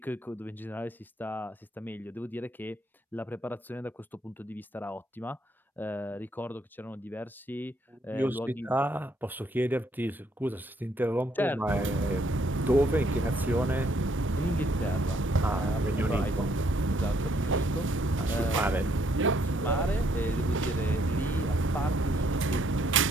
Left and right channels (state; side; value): normal; both; correlation 0.69